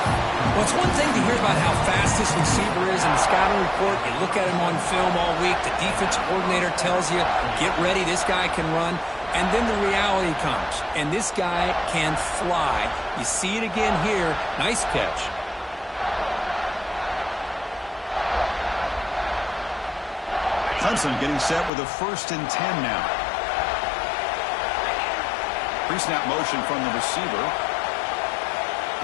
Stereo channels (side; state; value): right; drops out; at 21.7 s